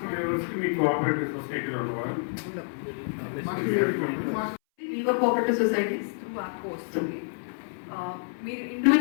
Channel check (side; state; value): right; silent; 59 dB below the other